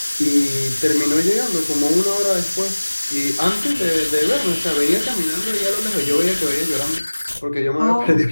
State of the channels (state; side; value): inverted; both; correlation -1.00